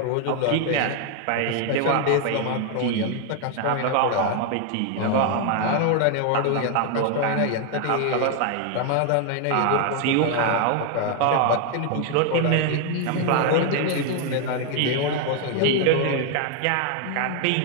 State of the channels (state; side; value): different; both; correlation 0.01